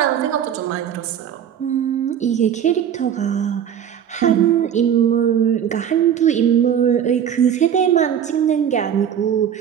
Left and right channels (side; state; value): left; quieter; 9.1 dB